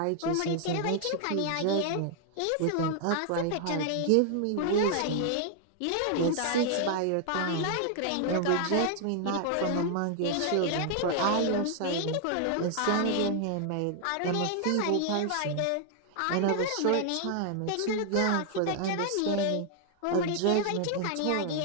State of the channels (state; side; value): different; both; correlation 0.00